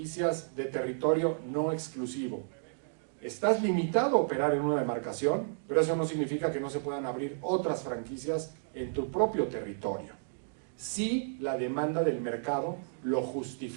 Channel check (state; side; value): silent; left; digital silence